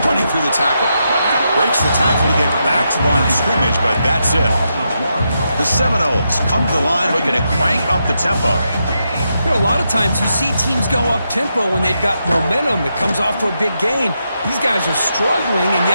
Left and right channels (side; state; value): both; inverted; correlation -0.83